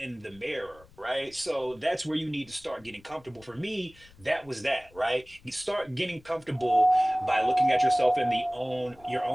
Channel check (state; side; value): noise; left; rumble, 26 dB below the sound